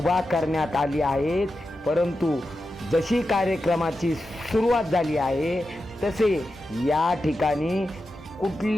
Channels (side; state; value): both; normal; correlation 0.90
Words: करण्यात आली आहेत. परंतु जशी कार्यक्रमाची सुरुवात झाली आहे तसे या ठिकाणी